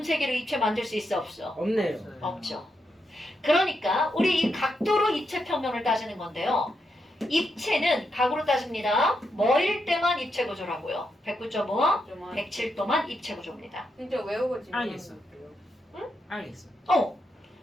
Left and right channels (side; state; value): both; normal; correlation 0.83